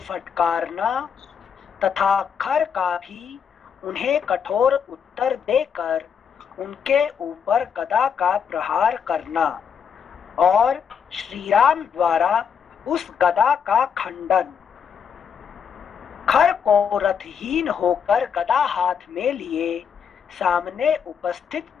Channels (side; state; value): right; quieter; 7.2 dB